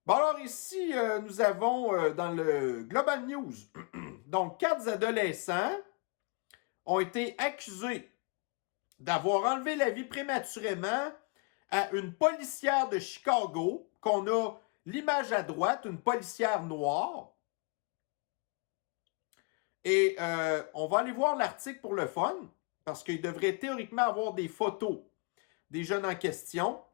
Bon, alors ici, nous avons dans le Global News, donc 4 adolescents ont été accusés d'avoir enlevé la vie prématurément à une policière de Chicago, qu'on a l'image à droite, une policière noire. Et on va aller voir l'article pour le fun, parce qu'il devrait théoriquement avoir des photos des jeunes en question.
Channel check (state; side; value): quieter; right; 32.0 dB